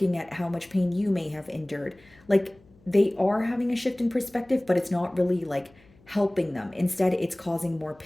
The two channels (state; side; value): noise; left; hum, 28 dB below the sound